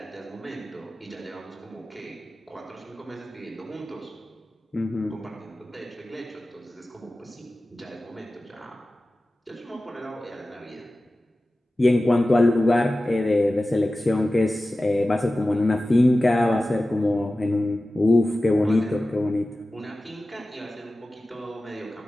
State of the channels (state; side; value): normal; both; correlation 0.95